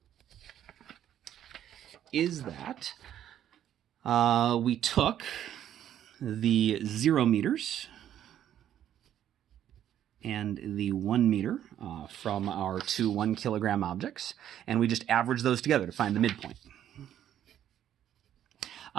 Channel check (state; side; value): quieter; left; 10.8 dB